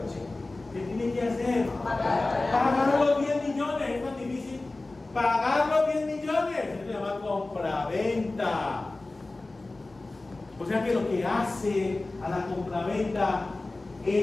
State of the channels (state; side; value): quieter; right; 3.1 dB